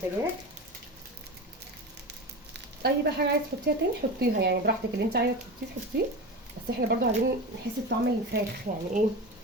اي بقى حاجه عايزه تحطيها تاني حطيها يعني براحتك، اللي انت عايزه تحطيه. بس احنا برضو عايزين نحس بطعم الفراخ يعني ايه،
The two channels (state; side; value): normal; both; correlation 0.27